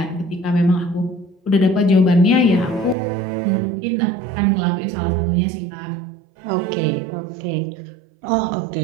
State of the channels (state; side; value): drops out; left; at 3.0 s